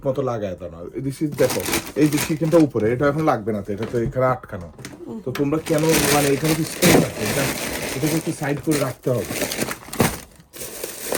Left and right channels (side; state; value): both; identical; correlation 1.00